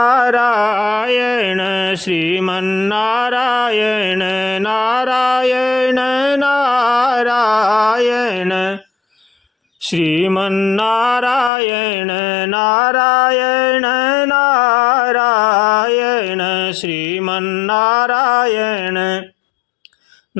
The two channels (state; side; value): drops out; right; at 11.5 s